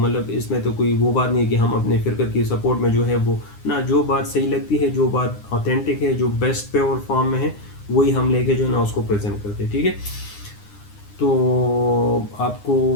اس میں تو کوئی وہ بات نہیں ہے کہ ہم اپنے فرقہ کی سپورٹ میں جو ہے وہ نہ، جو بات صحیح لگتی ہے، جو بات اوتھینٹک ہے، جو بیسٹ پیور فارم میں ہے، وہی ہم لے کے جو ہے نا اس کو پریزنٹ کرتے. ٹھیک ہے، تو آپ کو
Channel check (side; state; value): right; late; 9.8 ms